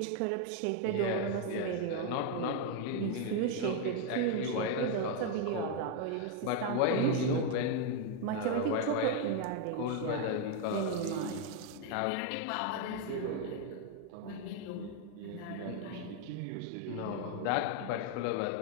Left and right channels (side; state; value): both; different; correlation 0.01